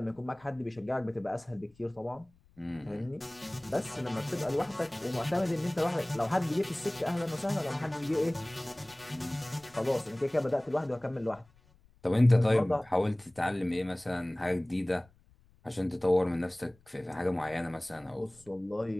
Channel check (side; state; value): left; noise; rumble, 30 dB below the sound